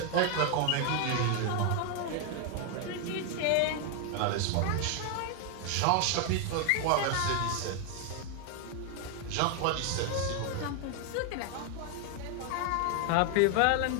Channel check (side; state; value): both; different; correlation 0.00